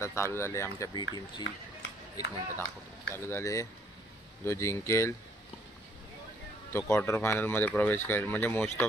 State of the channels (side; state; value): both; normal; correlation 0.64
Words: चालू झाली आमच्या बी टीमची। एक मिनिट दाखवतो। चालू झाले, जो जिंकेल तो क्वार्टर फायनलमध्ये प्रवेश करेल, म्हणजे मोस्ट